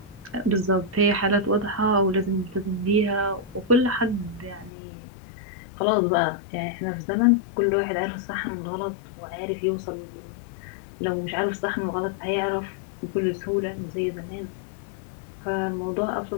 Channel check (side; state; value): right; drops out; at 4.7 s